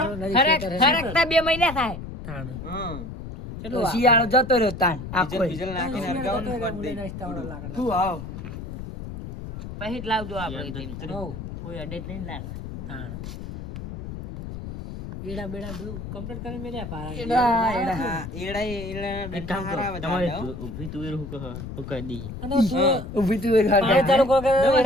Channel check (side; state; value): left; noise; rumble, 9 dB below the sound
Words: ખરેખતા 2 મહિના થાય થાણ હા તો શિયાળો જતો રહ્યો તાન આખો ડીઝલ નાખીને હરગાવાનું કરી દે શું આવ પછી જ લાવજો આપણે તેમ. હોવ કોઈ અડે જ નહીં લાગે થાણ એડા બેડા બધું કમ્પ્લીટ કરી મેલ્યા પારા હા એડા ઊભી તુવેર હું કહી દી અને તું ઊભી તુવેર પાણી ચાલુ કરો કે